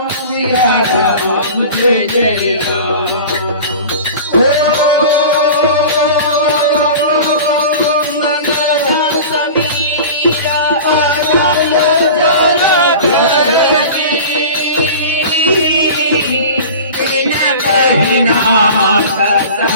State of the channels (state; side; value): inverted; both; correlation -0.36